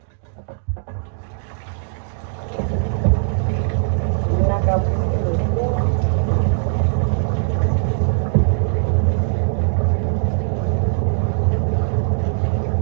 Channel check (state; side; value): silent; left; digital silence